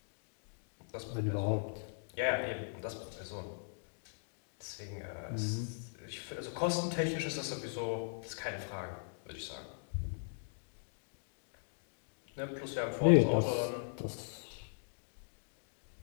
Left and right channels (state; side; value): silent; right; digital silence